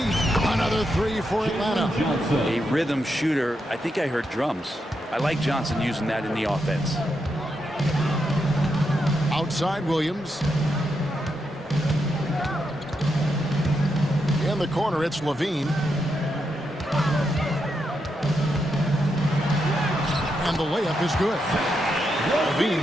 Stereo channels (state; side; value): normal; both; correlation 0.83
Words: Another 3 for Atlanta. A rhythm shooter. I think I heard drums. I like Johnson using that in the offense. Outside Williams. In the corner, it's Levine. And the layup is good.